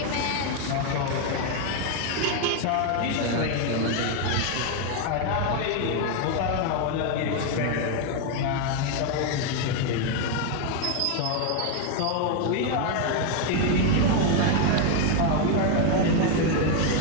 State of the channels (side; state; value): both; different; correlation 0.01